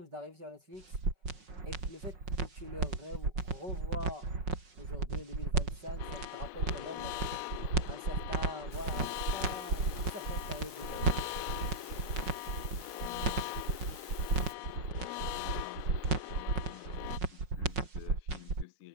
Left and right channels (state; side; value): late; left; 4.8 ms